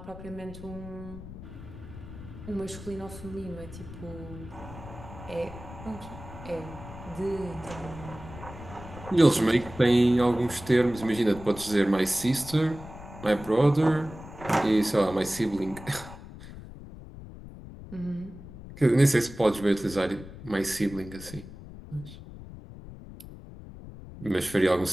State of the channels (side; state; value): left; noise; rumble, 14 dB below the sound